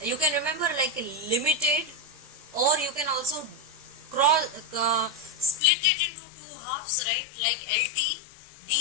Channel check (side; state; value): right; drops out; at 5.6 s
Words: you can remember like limited, or you can also split it into two halves, right? Like